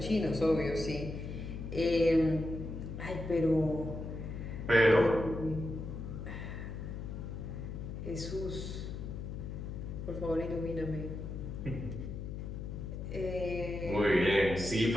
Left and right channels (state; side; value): noise; left; hum, 7 dB below the sound